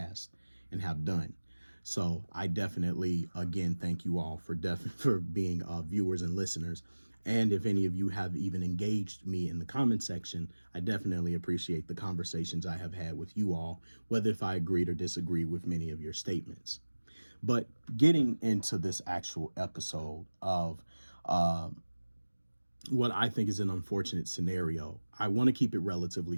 and have done. So I definitely, again, thank you all for being viewers and listeners. And if any of you have even engaged me in the comment section, I definitely appreciate the conversations I have had with you all, whether if I agreed or disagreed with many of your statements. But getting into this actual episode of what I think is an unfortunate scenario, I want to keep it relatively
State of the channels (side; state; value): both; inverted; correlation -1.00